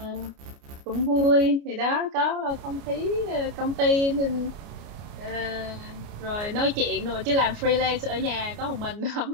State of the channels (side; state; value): left; late; 29 ms